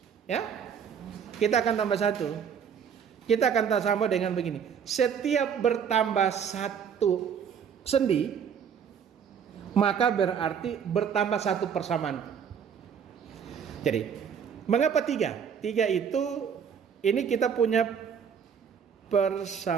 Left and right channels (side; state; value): left; quieter; 7.4 dB